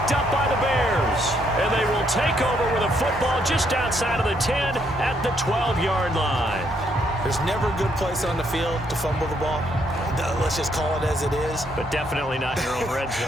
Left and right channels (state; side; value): normal; both; correlation 0.72